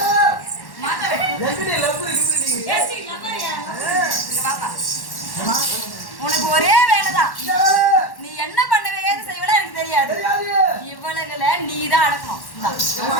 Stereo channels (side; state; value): right; late; 1.1 ms